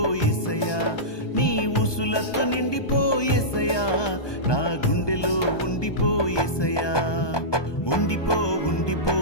నీ ఊసులతో నిండిపోయేసయ్యా, నా గుండెలో ఉండిపోయేసయ్యా,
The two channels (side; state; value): right; late; 1.2 ms